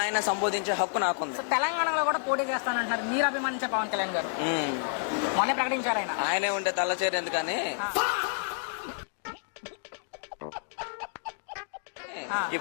అయినా సంబోధించే హక్కు నాకుంది. తెలంగాణలో కూడా పోటీ చేస్తానంటున్నారు మీరు అభిమానించే పవన్ కళ్యాణ్ గారు. మొన్న ప్రకటించారు ఆయన. ఆయనే ఉంటే తల్లచేరు ఎందుకని.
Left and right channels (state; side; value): silent; right; digital silence